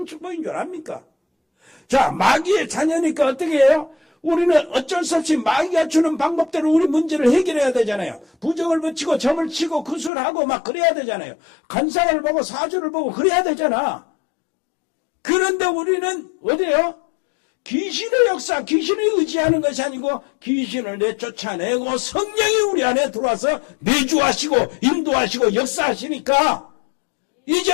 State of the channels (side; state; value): right; drops out; at 10.1 s